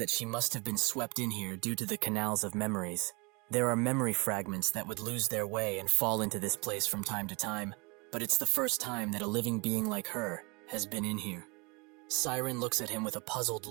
she must have been swept in here due to the canals of memories. There are memory fragments that would lose their way and fall into this place from time to time, but it's the first time that a living being like her has been in here. Siren looks at him with a puzzled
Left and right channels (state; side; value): quieter; left; 28.8 dB